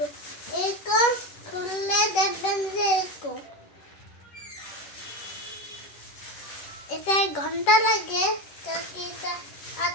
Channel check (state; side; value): late; right; 10 ms